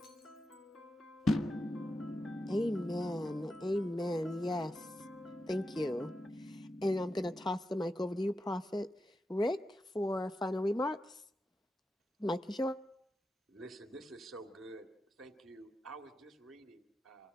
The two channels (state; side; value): normal; both; correlation 0.89